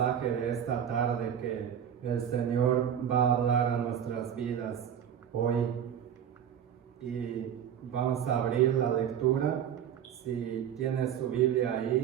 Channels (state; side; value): quieter; left; 9.1 dB